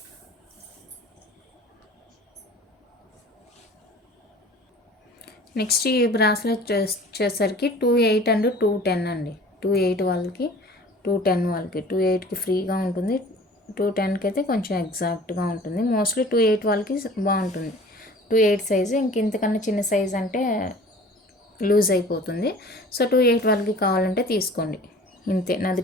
నెక్స్ట్ ఈ బ్రాస్లెట్ వచ్చేసరికి 28 అండ్ 210 అండి. 28 వాళ్ళకి, 210 వాళ్ళకి. 28కి ఫ్రీగా ఉంటుంది, 210కి అయితే కొంచెం ఎగ్జాక్ట్గా ఉంటుంది. మోస్ట్లీ 28 వాళ్ళకి బాగుంటుంది. 28 సైజు. ఇంతకన్నా చిన్న సైజ్ అంటే లూజ్ అయిపోతుంది. సో 28 వాళ్ళకి కావాలంటే తీసుకోండి. ఇంతే, నాది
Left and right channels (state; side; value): normal; both; correlation 0.45